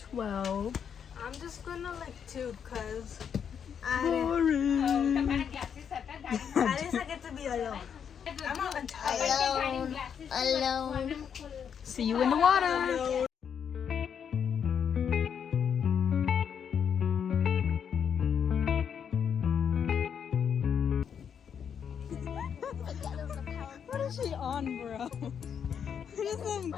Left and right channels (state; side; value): quieter; right; 7.7 dB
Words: I'm just gonna like tube because Boring. at least I get to be alone. I'm not tired. Alone. See you in the water. What is she on, bro? What is some